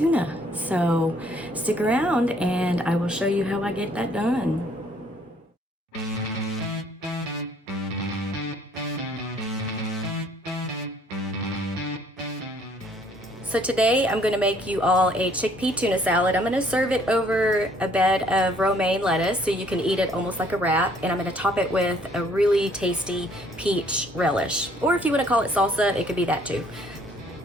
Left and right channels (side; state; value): both; normal; correlation 0.62